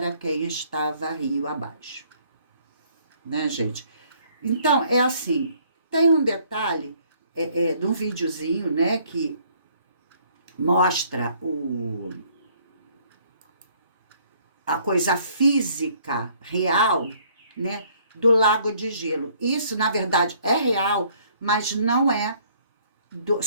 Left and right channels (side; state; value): both; inverted; correlation -0.61